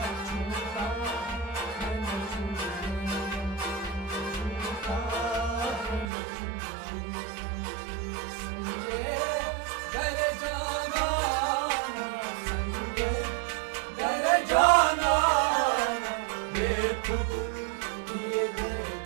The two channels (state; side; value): drops out; left; at 6.1 s